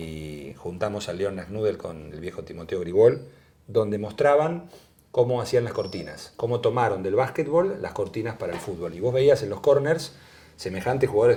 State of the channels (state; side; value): identical; both; correlation 1.00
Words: juntamos a Leon Nasnudel con el viejo Timoteo Grigol, donde mostraban cómo hacían las cortinas, cómo tomaron del básquetbol las cortinas para el fútbol. Y vos veías en los corners semejantes jugadores